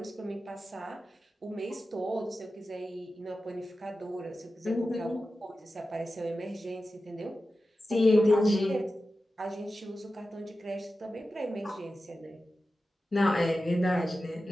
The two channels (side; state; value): both; normal; correlation 0.93